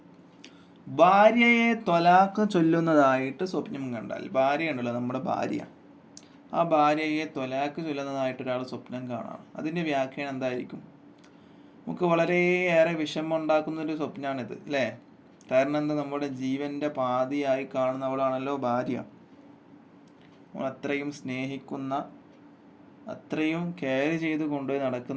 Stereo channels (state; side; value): identical; both; correlation 1.00